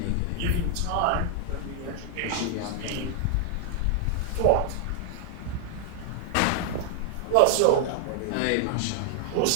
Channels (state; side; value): different; both; correlation 0.00